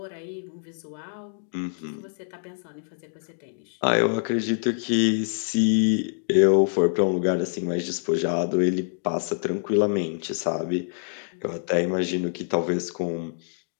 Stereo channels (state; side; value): silent; right; digital silence